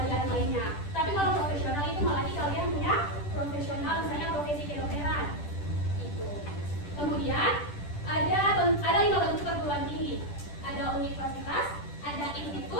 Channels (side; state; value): right; late; 10 ms